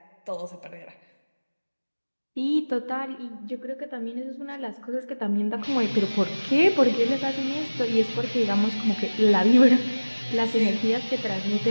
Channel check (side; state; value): both; inverted; correlation -1.00